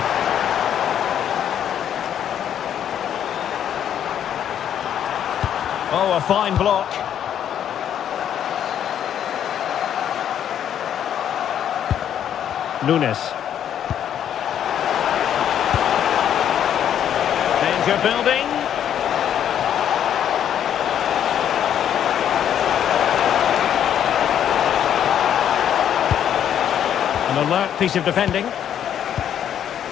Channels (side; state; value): right; quieter; 9.7 dB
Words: Oh, a fine block. Nunes. Danger building. An alert piece of defending.